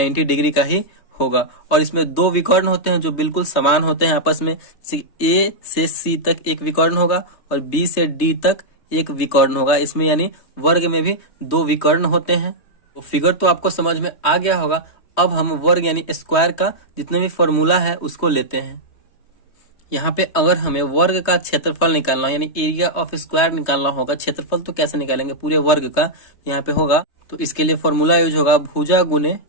डिग्री का ही होगा। और इसमें दो विकर्ण होते हैं जो बिल्कुल समान होते हैं आपस में। A से C तक एक विकर्ण होगा और B से D तक एक विकर्ण होगा। इसमें यानी वर्ग में भी दो विकर्ण होते हैं। तो फिगर तो आपको समझ में आ गया होगा। अब हम वर्ग यानी स्क्वायर का जितने भी फॉर्मूला है उसको लेते हैं। यहाँ पे अगर हमें वर्ग का क्षेत्रफल निकालना यानी एरिया ऑफ स्क्वायर निकालना होगा, क्षेत्रफल तो कैसे निकालेंगे पूरे वर्ग का, यहाँ पे होगा। तो इसके लिए फॉर्मूला यूज होगा भुजा गुने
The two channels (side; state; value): right; late; 3.3 ms